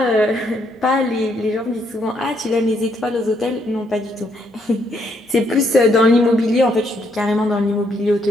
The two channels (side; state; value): both; normal; correlation 0.73